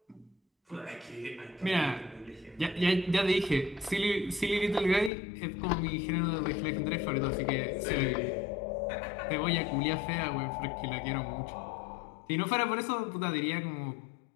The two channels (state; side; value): drops out; right; at 5.1 s